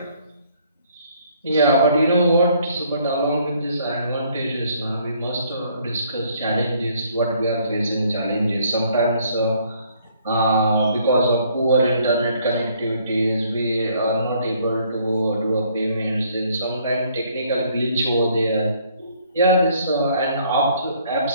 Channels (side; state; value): both; inverted; correlation -0.64